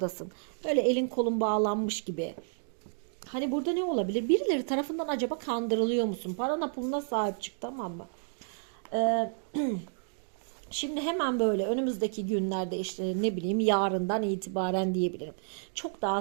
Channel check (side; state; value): left; silent; digital silence